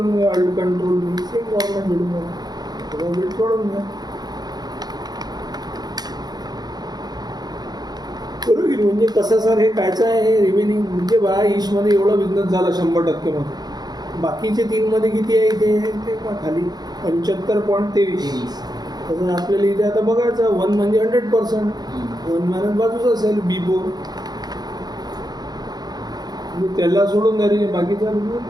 घ्या. अल्ट कंट्रोल सेम फॉर्मॅट भेटून घ्या. थोडा वेट वाढवून घ्या. बरोबर. म्हणजे कसं सर हे कायचं आहे हे रिमेनिंग म्हणजे बा ईशमध्ये एवढा बिझनेस झाला 100% मध्ये. बाकीचे 3मध्ये किती आहे इथे ते खाली 75.23. तसं आपल्याला इथे आता बघायचं 1 म्हणजे 100%. 1 मायनस बाजूच असेल B4. म्हणजे त्याला सोडून द्या बाकीचा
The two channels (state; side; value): late; left; 0.19 ms